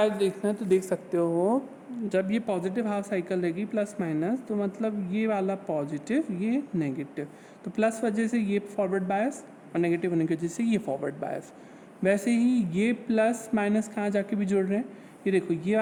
देखना है तो देख सकते हो, जब ये पॉजिटिव हाफ साइकिल रहेगी प्लस माइनस तो मतलब ये वाला पॉजिटिव ये नेगेटिव, तो प्लस वजह से ये फॉरवर्ड बायस और नेगेटिव होने की वजह से ये फॉरवर्ड बायस। वैसे ही ये प्लस माइनस कहाँ जाके भी जुड़ रहे हैं, ये देखो ये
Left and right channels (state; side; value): identical; both; correlation 1.00